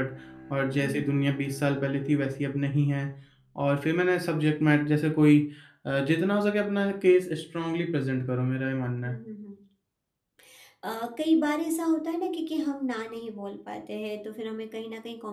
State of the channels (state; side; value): identical; both; correlation 1.00